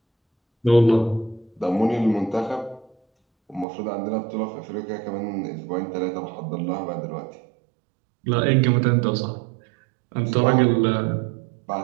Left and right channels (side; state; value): left; drops out; at 3.7 s